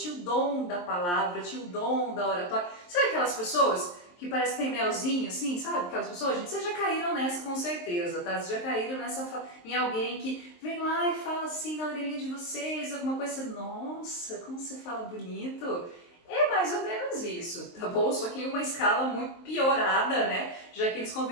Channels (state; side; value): late; right; 23 ms